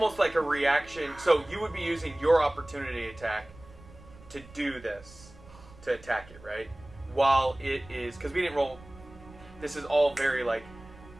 like a reaction. So you would be using your opportunity attack to do this, to attack it, right? While it is, because we didn't roll. This is all very like,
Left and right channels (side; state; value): right; noise; rumble, 21 dB below the sound